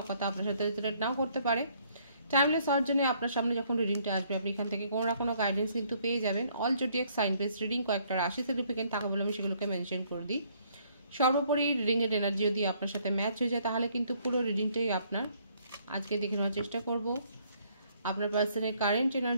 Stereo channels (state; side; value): inverted; both; correlation -0.65